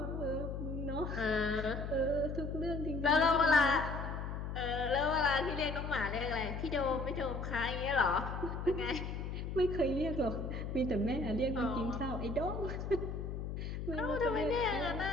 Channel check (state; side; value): noise; left; hum, 5 dB below the sound